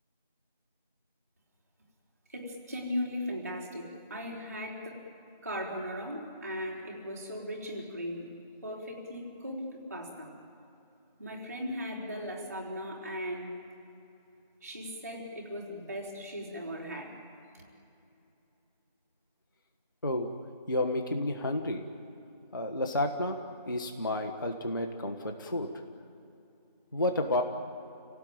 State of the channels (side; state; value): both; inverted; correlation -0.51